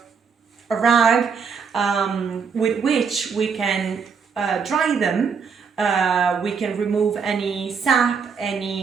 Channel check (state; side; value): quieter; left; 5.9 dB